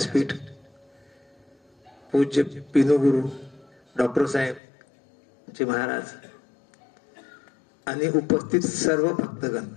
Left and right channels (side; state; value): right; drops out; at 4.6 s